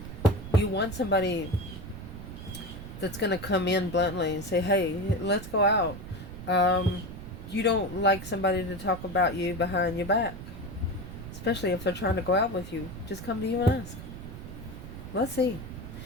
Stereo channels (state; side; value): noise; right; rumble, 11 dB below the sound